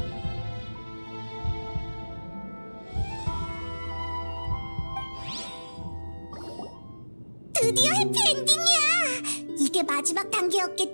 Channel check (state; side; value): inverted; both; correlation -1.00